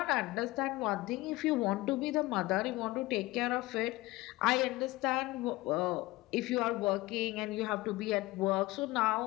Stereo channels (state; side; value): quieter; right; 19.8 dB